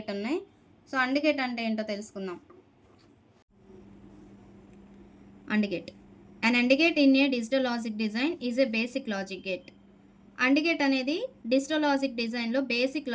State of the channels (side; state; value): both; identical; correlation 1.00